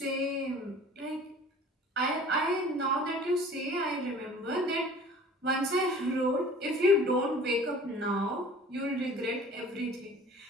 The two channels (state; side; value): normal; both; correlation 0.46